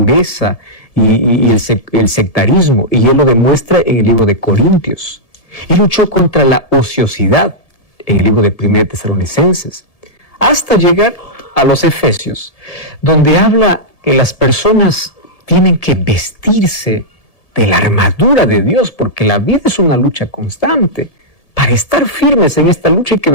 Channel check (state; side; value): late; right; 1.7 ms